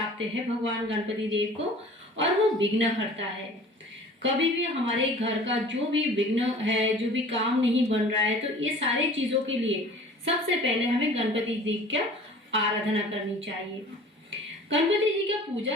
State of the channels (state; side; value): normal; both; correlation 0.45